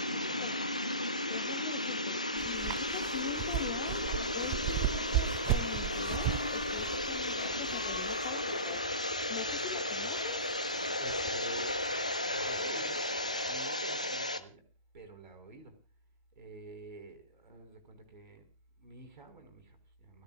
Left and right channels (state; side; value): inverted; both; correlation -0.32